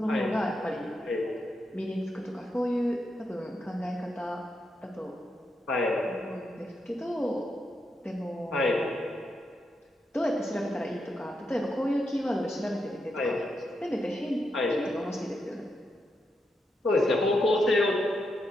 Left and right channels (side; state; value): both; normal; correlation 0.83